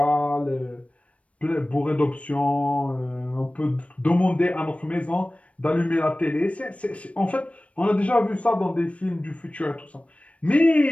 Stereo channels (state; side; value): late; right; 0.063 ms